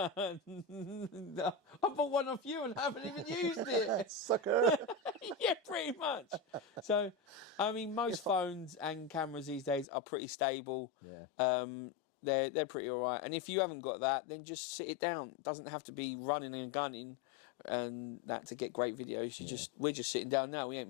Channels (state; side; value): drops out; right; at 9.9 s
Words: bought one off you and haven't even used it. Sucker. Yeah, pretty much. So, I mean, most phones and cameras these days are pretty stable. Yeah. They're pretty all right. And if you haven't got that, then just sit it down. It doesn't have to be running and gunning and that to get great videos. We're just sitting down now. We ain't